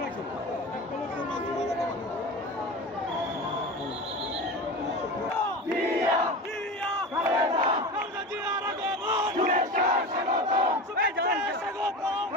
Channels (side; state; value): both; normal; correlation 0.29